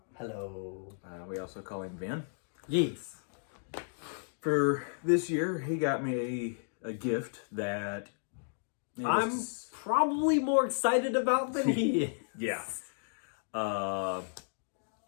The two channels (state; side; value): silent; right; digital silence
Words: Hello. We also call him Vin. Yes. For this year, he got me a gift that... I'm probably more excited about than he is. Yeah.